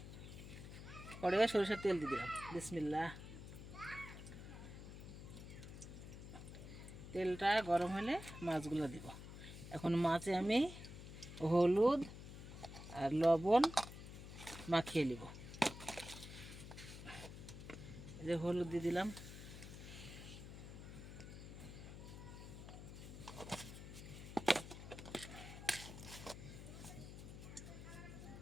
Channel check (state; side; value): noise; left; hum, 11 dB below the sound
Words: কড়াইয়ে সরষের তেল দিয়ে দিলাম। বিসমিল্লাহ। তেলটা গরম হলে মাছগুলো দিব। এখন মাছে আমি হলুদ আর লবণ মাখিয়ে নিব। এই যে হলুদ দিয়ে দিলাম,